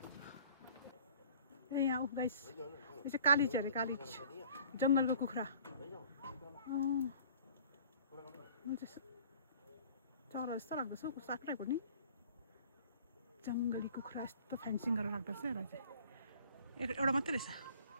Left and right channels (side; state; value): both; inverted; correlation -0.50